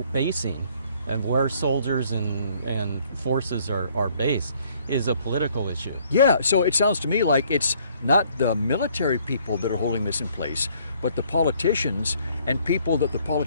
basing and where soldiers and forces are based is a political issue. Yeah, so it sounds to me like it's not the military people that are holding this in place, but the politicians and people that the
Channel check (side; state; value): both; inverted; correlation -0.62